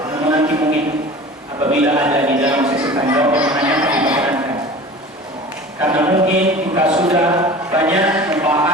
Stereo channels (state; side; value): normal; both; correlation 0.39